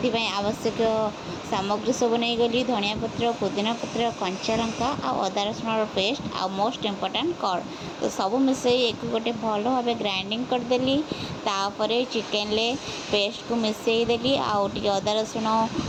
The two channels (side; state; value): both; identical; correlation 1.00